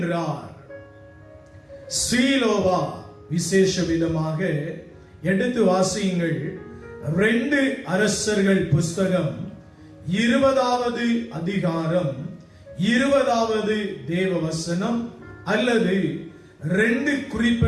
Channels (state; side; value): identical; both; correlation 1.00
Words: சீலோவா விசேஷ விதமாக எடுத்து வாசியுங்கள். 2 அரசர்கள் புஸ்தகம் 20வது அதிகாரம் 20வது தேவவசனம், அல்லது 2